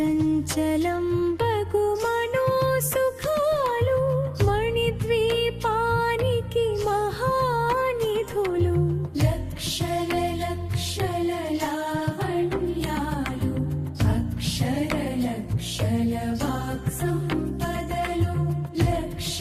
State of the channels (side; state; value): both; identical; correlation 1.00